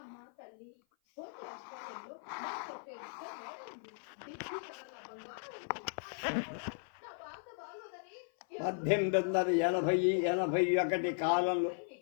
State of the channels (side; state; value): right; silent; 53 dB below the other